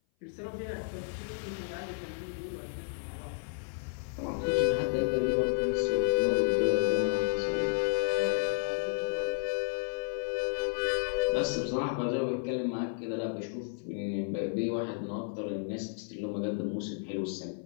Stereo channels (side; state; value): right; silent; 56 dB below the other